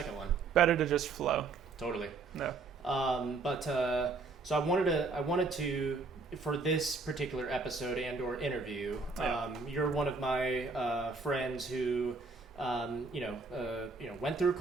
one. Better to just flow. Totally. No. So I wanted to, for this particular episode and or interview, you're one of my friends who went through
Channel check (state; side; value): quieter; left; 4.1 dB